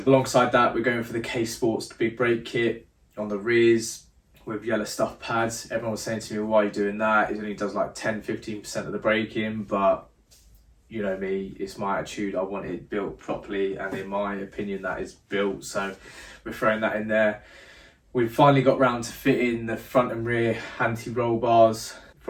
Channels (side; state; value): both; identical; correlation 1.00